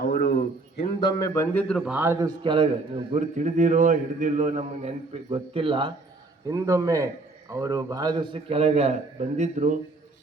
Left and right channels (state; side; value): quieter; left; 3.3 dB